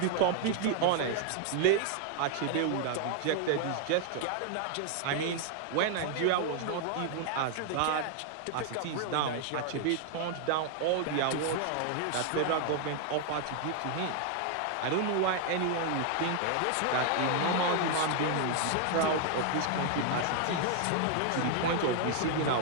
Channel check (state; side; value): different; both; correlation 0.00